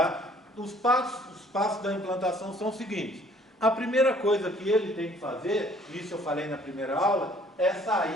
Os passos da implantação são os seguintes. A primeira coisa que ele tem que fazer, isso eu falei na primeira aula, é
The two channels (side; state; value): both; normal; correlation 0.58